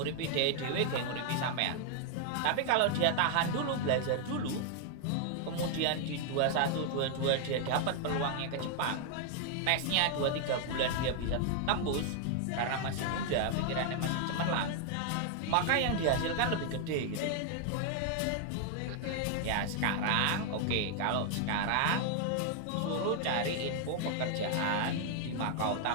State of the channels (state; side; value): different; both; correlation 0.00